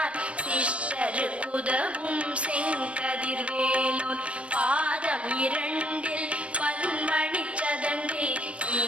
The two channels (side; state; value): left; late; 0.061 ms